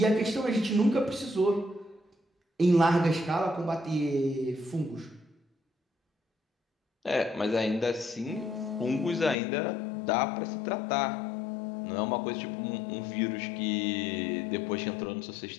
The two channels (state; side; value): drops out; right; at 9.3 s